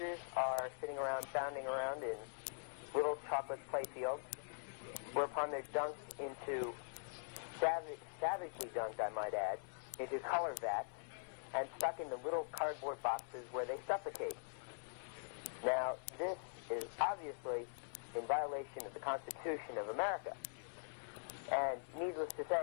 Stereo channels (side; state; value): right; silent; digital silence